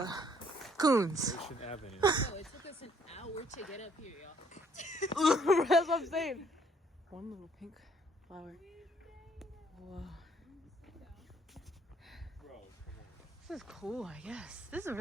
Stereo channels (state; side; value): normal; both; correlation 0.64